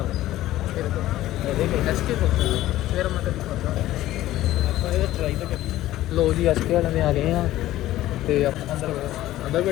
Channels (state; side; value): quieter; right; 14.9 dB